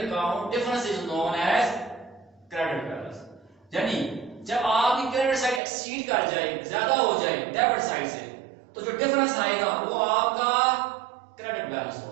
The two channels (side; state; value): left; drops out; at 5.6 s